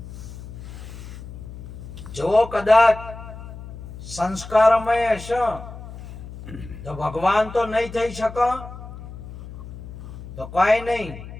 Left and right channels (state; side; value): noise; left; hum, 13 dB below the sound